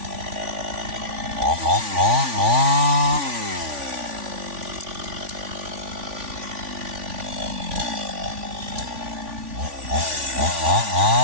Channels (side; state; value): left; late; 3.5 ms